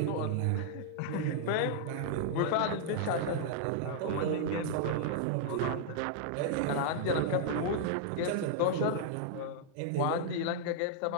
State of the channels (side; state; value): both; different; correlation -0.01